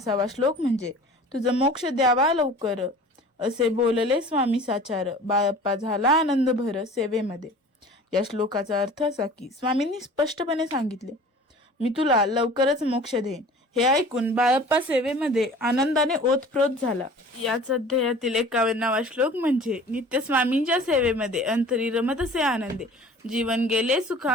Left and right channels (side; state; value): both; normal; correlation 0.44